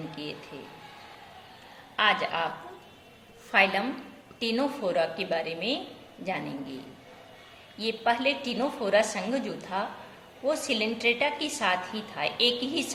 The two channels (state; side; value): identical; both; correlation 1.00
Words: किए थे। आज आप फाइलम टिनोफोरा के बारे में जानेंगे। ये पहले टिनोफोरा संघ जो था वो सिलेंट्रेटा के साथ ही था, एक ही